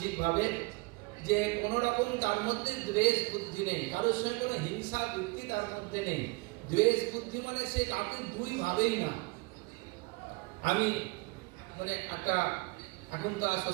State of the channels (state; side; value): quieter; left; 26.9 dB